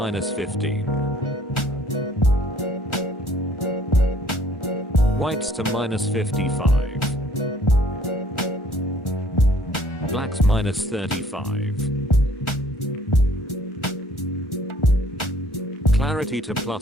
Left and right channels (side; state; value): both; normal; correlation 0.58